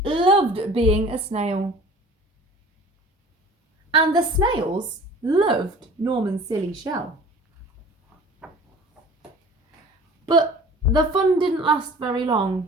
loved being a snail. And the snails loved Norman's silly shell. But the fun didn't last very long.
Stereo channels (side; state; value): both; normal; correlation 0.44